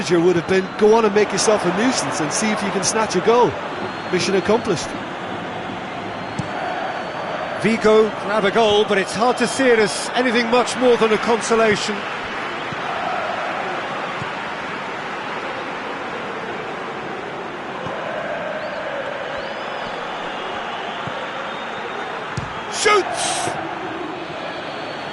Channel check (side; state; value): both; identical; correlation 1.00